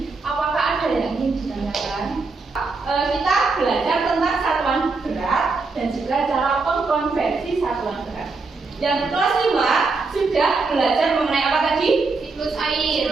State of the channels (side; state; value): left; quieter; 4.0 dB